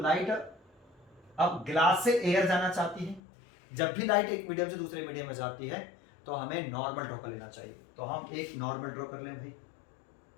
अब ग्लास से एयर जाना चाहती है। जब भी लाइट एक मीडियम से दूसरे मीडियम में जाती है तो हमें नॉर्मल ड्रॉ कर लेना चाहिए। तो हम एक नॉर्मल ड्रॉ कर लें भाई।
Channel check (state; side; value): drops out; right; at 3.2 s